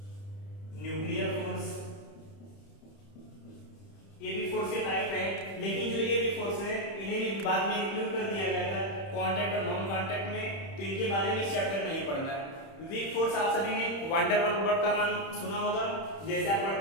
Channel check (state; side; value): late; right; 30 ms